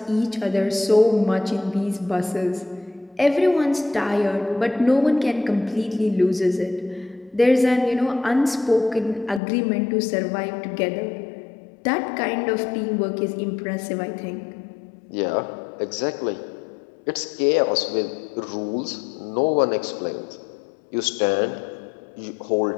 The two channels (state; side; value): drops out; right; at 9.4 s